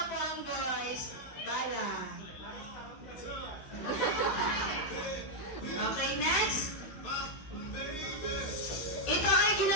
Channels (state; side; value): late; right; 16 ms